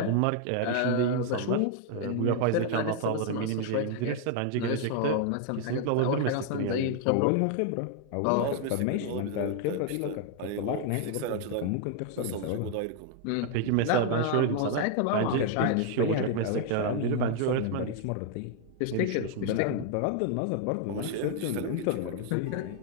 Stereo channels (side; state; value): both; different; correlation 0.00